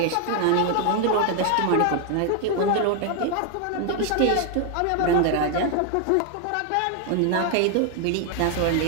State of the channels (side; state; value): both; different; correlation 0.00